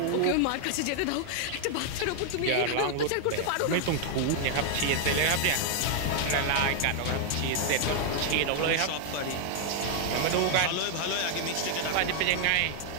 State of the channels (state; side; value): different; both; correlation 0.00